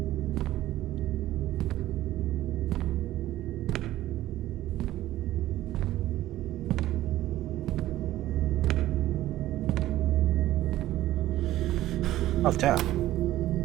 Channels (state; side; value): quieter; left; 14.7 dB